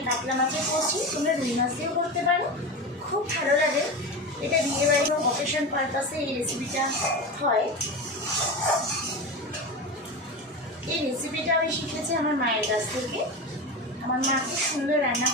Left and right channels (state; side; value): normal; both; correlation 0.23